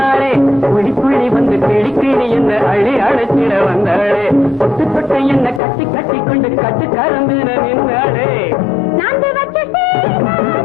புள்ளி புள்ளி வந்து கிளி கிளி என்ன அள்ளி அழைச்சிட வந்தாளே தொட்டு தொட்டு என்ன கட்டி கட்டி கொண்டு கட்டி கருந்தின நின்னாளே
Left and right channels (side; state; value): right; drops out; at 5.6 s